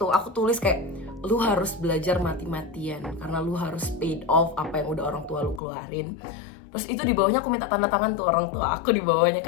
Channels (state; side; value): drops out; right; at 5.6 s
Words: aku tulis kayak lu harus belajar mati-matian karena lu harus paid off apa yang udah orang tua lu keluarin. Terus itu di bawahnya aku minta tanda tangan tuh orang tua aku, di bawahnya